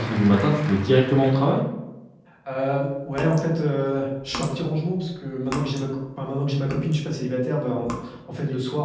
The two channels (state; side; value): identical; both; correlation 1.00